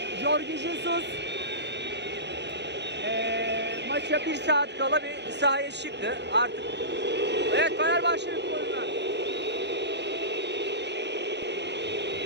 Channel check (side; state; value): left; late; 0.50 ms